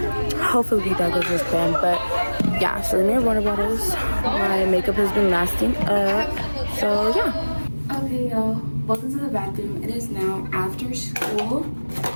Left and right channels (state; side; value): inverted; both; correlation -1.00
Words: goes as planned. But yeah, so we made water bottles. My makeup has been lasting up. So yeah. Okay, y'all. Welcome to the bathroom. It is now after school.